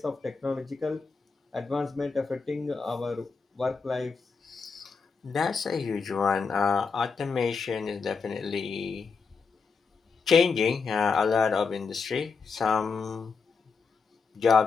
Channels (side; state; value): right; quieter; 5.0 dB